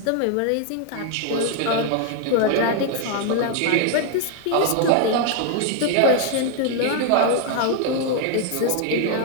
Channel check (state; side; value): different; both; correlation 0.00